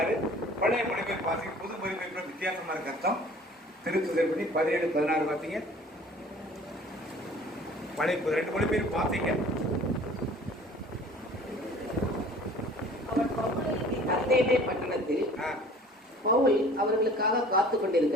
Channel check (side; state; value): both; normal; correlation 0.48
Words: பழைய மொழிபெயர்ப்பு வாசிங்க, புது மொழிபெயர்ப்பு வித்தியாசமா இருக்கு அர்த்தம். திருத்துதர்படி 17:16 வாசிங்க, பழைய 2 மொழிபெயர்ப்பு வாசிங்க. அவர் அத்தேனே பட்டணத்தில் பவுல் அவர்களுக்காக காத்து